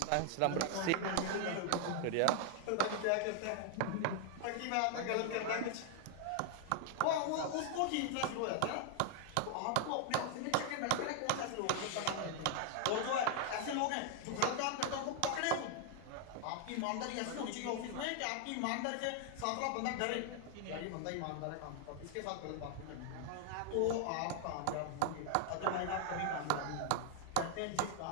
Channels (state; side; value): different; both; correlation 0.00